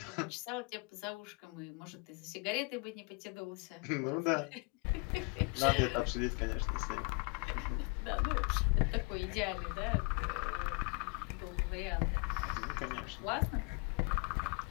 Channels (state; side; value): quieter; right; 32.7 dB